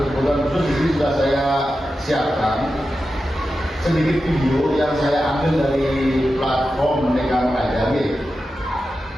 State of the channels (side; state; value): both; normal; correlation 0.91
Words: khusus. Di sini sudah saya siapkan sedikit video yang saya ambil dari platform Merdeka Mengajar.